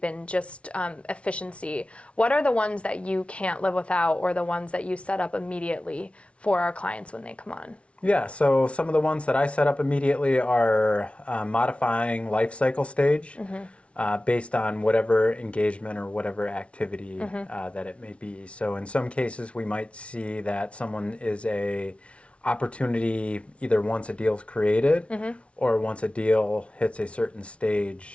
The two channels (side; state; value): right; late; 0.061 ms